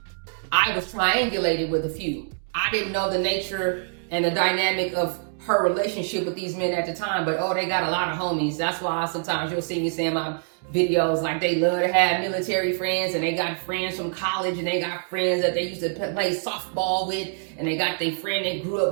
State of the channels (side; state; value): left; silent; digital silence